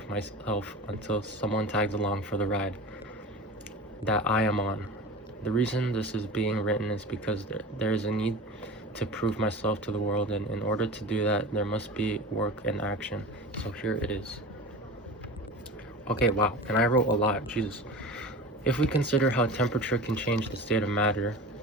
myself until someone tags along for the ride that I am on. The reason this is being written is because there is a need to prove myself to the world, and in order to do that, there must be work and action. So here it is. Okay, wow, and I wrote a lot, Jesus. If we consider how temperature can change the state of matter,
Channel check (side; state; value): both; normal; correlation 0.33